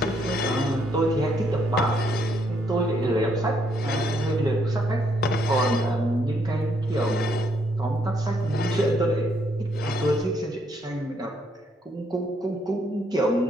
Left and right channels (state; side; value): normal; both; correlation 0.72